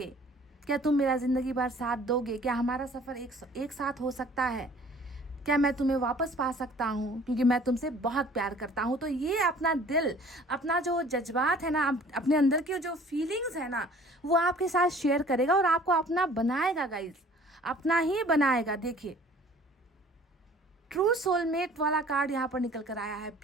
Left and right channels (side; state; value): both; normal; correlation 0.51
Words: क्या तुम मेरा ज़िंदगी भर साथ दोगे, क्या हमारा सफ़र एक साथ हो सकता है, क्या मैं तुम्हें वापस पा सकता हूँ, क्योंकि मैं तुमसे बहुत प्यार करता हूँ। तो ये अपना दिल, अपना जो जज्बात है ना, अपने अंदर की जो फीलिंग्स है ना, वो आपके साथ शेयर करेगा और आपको अपना बनाएगा गाइज, अपना ही बनाएगा। देखिए ट्रू सोलमेट वाला कार्ड यहाँ पर निकल कर आया है,